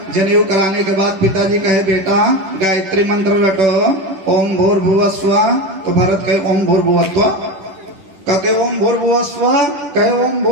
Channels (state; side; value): late; left; 10 ms